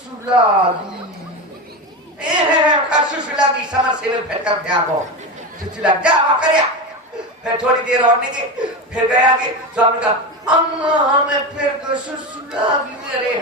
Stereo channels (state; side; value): normal; both; correlation 0.20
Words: सुसुलागी समर से फिर कर त्यागो सुसुला जा कर। फिर थोड़ी देर और निकली फिर गया आगे। स्वामी का अम्मा हमें फिर सुसुलागी मेरे